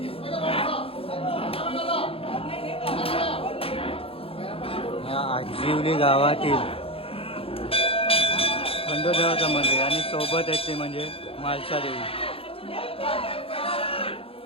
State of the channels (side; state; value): right; late; 0.27 ms